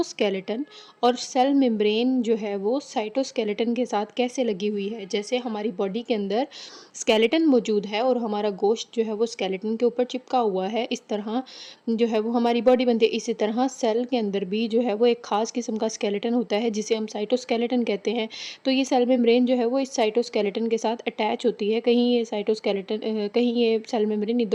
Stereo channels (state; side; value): identical; both; correlation 1.00